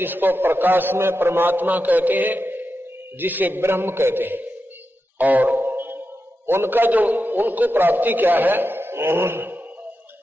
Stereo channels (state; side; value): normal; both; correlation 0.89